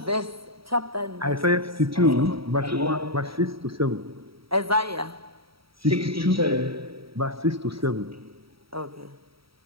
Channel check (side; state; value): left; late; 0.75 ms